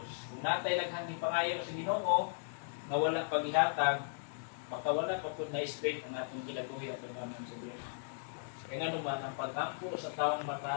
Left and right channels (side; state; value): right; silent; digital silence